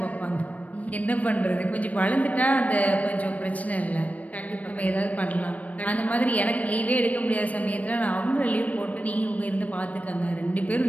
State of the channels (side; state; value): right; late; 0.069 ms